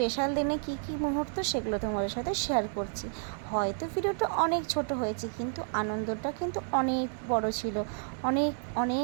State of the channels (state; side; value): silent; left; digital silence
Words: দিনে কি কি মুহূর্ত, সেগুলো তোমাদের সাথে শেয়ার করছি। হয়তো ভিডিওটা অনেক ছোট হয়েছে, কিন্তু আনন্দটা কিন্তু অনেক বড় ছিল। অনেক